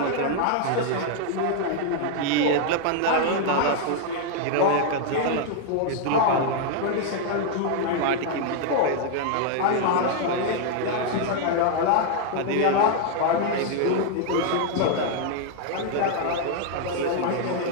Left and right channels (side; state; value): both; different; correlation 0.00